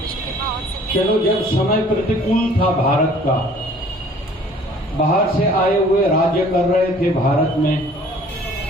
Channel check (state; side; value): normal; both; correlation 0.53